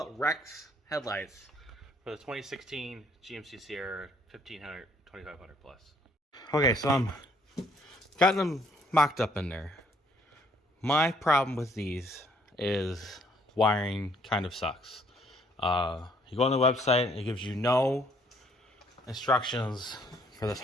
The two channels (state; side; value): normal; both; correlation 0.65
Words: Rex headlights for the 2016 GMC Sierra 1500, 2500 plus. Okay, so I'm got them mocked up in there. My problem with these is wiring kind of sucks. You go on the website, it gives you no instructions for this